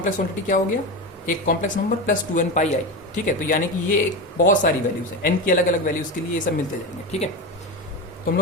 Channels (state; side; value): normal; both; correlation 0.20